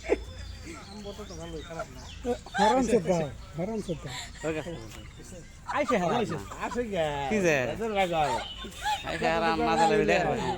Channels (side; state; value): both; identical; correlation 1.00